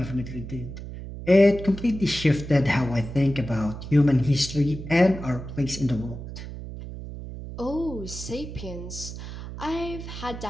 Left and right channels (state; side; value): noise; right; hum, 10 dB below the sound